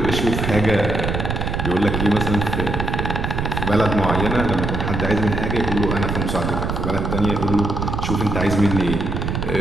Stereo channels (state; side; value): noise; right; rumble, 2 dB below the sound